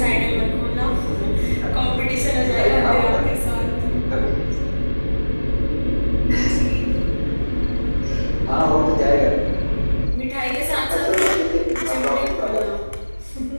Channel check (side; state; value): both; inverted; correlation -1.00